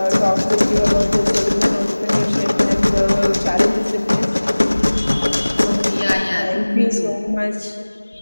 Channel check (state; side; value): inverted; both; correlation -1.00